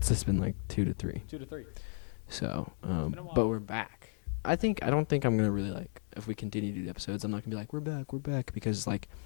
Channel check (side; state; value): right; silent; digital silence